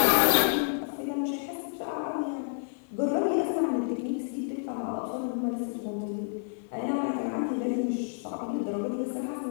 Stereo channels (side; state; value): right; silent; digital silence